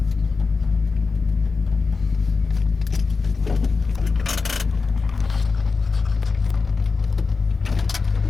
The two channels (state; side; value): quieter; right; 4.5 dB